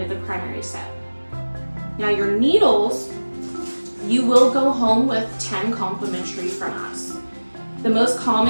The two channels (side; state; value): both; inverted; correlation -1.00